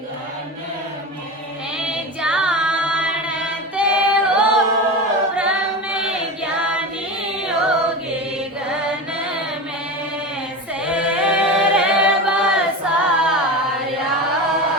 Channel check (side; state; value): both; normal; correlation 0.25